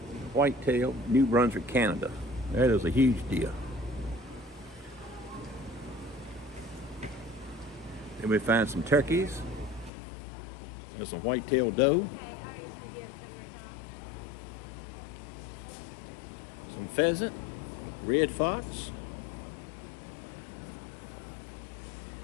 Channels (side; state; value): right; drops out; at 9.9 s